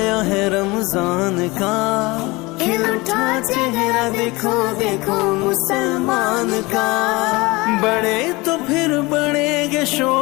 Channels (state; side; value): quieter; right; 23.3 dB